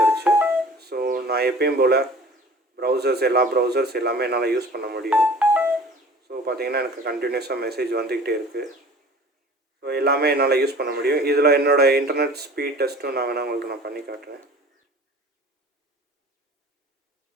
ஸோ நான் எப்பயும் போல் எல்லா ப்ரௌசர்ஸ் எல்லாமே என்னால் யூஸ் பண்ண முடியும். ஸோ பார்த்தீங்கன்னா எனக்கு கண்டினியூஸாக மெசேஜ் வந்துக்கிட்டே இருக்குது. ஸோ எல்லாமே என்னால் யூஸ் பண்ண முடியும். இதில் என்னோடய இன்டர்நெட் ஸ்பீட் டெஸ்ட்டும் நான் வேணால் உங்களுக்கு நான் பண்ணி காட்டுறேன்.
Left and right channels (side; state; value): both; normal; correlation 0.45